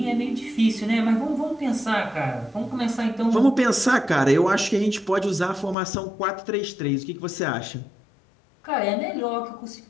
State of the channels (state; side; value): drops out; right; at 5.8 s